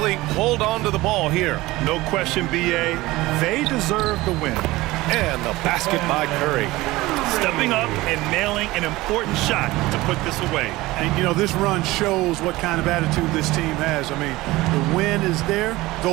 hold on to the ball here. No question, BA. They deserve the win. And the basket by Curry. Stepping up and nailing an important shot to put this away. And, you know, this run shows what kind of attitude this team has. I mean, the win is there.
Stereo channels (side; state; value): left; quieter; 19.2 dB